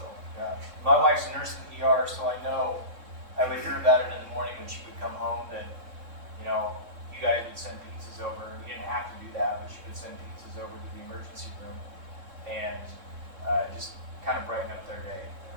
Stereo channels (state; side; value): late; left; 3.6 ms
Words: Yeah. My wife's a nurse in the ER, so I know. I would hear about it in the morning when she would come home that, you guys would send pizzas over. You didn't have to do that, but she would send pizzas over to the emergency room and just kind of brighten up their day.